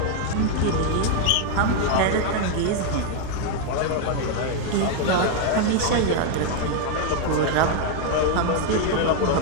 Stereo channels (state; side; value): different; both; correlation 0.00